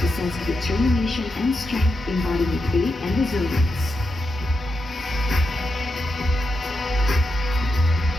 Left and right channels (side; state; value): both; normal; correlation 0.86